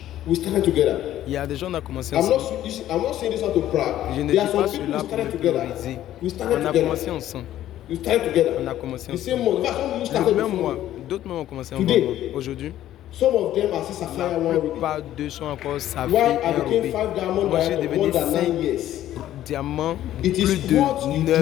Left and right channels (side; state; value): right; quieter; 12.8 dB